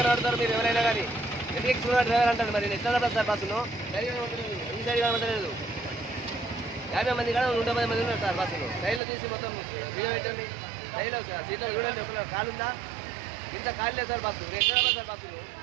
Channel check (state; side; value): drops out; left; at 9.0 s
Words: ఆడతారు మీరు ఎవరైనా కానీ. ఎందుకు ఎక్కువ డ్రైవర్ అంటారు మరి. ఎట్లా నడపాలి సార్ బస్సును? ఈ సైడ్ కనబడలేదు. 50 మంది కానీ 110 మంది ఉన్నారు సార్ బస్సులు. సైడ్లో తీసి మొత్తం బియ్యం పెట్టండి. సైడ్లో సీట్లో చూడండి. ఒక కాలు ఉందా? ఇంత కాలు లేదు సార్ బస్సు. నేను ఎక్కడ సార్ బస్సులు?